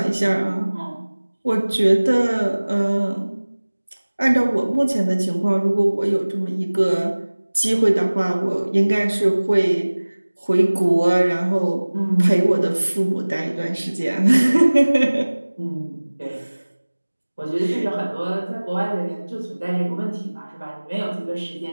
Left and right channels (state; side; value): inverted; both; correlation -1.00